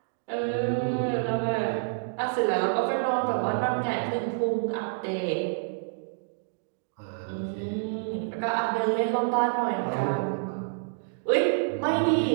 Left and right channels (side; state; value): left; silent; digital silence